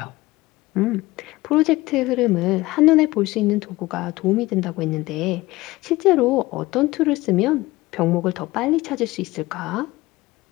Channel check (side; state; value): right; quieter; 19.5 dB